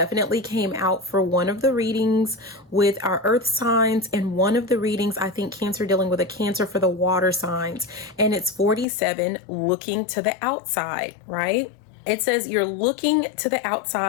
came out for one of the readings with our earth signs, and one of the readings, I think, Cancer dealing with a Cancer for the water signs, and it's 47, looking to the outside, right? It says you're looking to the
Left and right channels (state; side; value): drops out; right; at 8.8 s